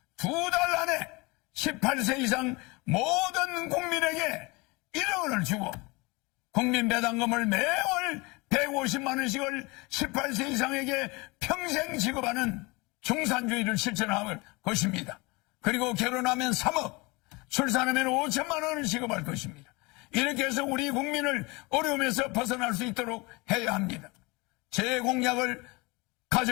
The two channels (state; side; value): quieter; right; 25.7 dB